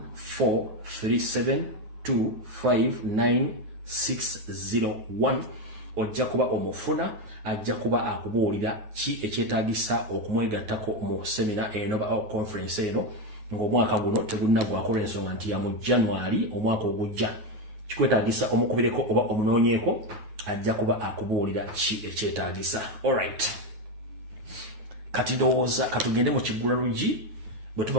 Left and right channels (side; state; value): left; late; 9.4 ms